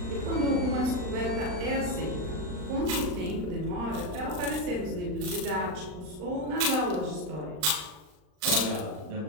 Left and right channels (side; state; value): left; late; 39 ms